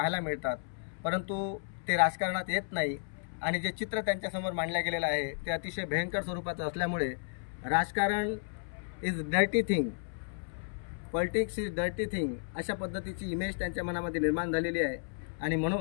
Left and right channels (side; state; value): right; silent; 56 dB below the other